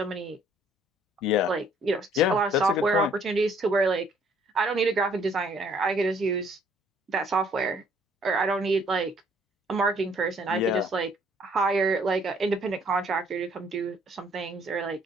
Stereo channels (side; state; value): both; normal; correlation 0.62